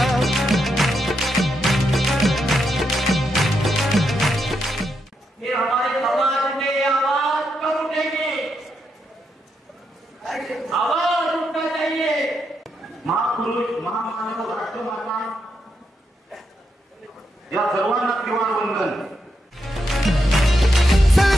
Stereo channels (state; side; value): normal; both; correlation 0.82